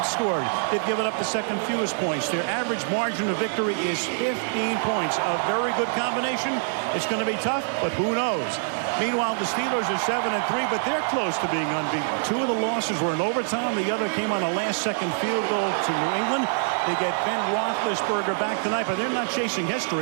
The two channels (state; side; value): silent; left; digital silence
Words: scored. They've given up the second fewest points. Their average margin of victory is 15 points. A very good combination. It's going to be tough, but who knows? Meanwhile, the Steelers are 7-3, but they're close to being unbeaten. Two of the losses were in overtime. The other came on a last-second field goal to New England. They get Ben Roethlisberger back tonight, but they're not chasing